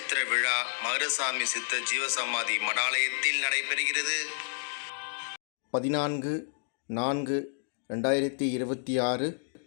விழா மதுரசாமி சித்தர் ஜீவசமாதி மடாலயத்தில் நடைபெறுகிறது. 14/4/2026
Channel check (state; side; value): silent; right; digital silence